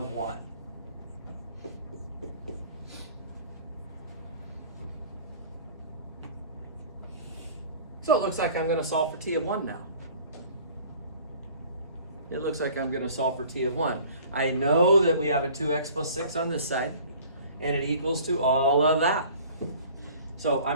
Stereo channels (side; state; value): both; inverted; correlation -0.48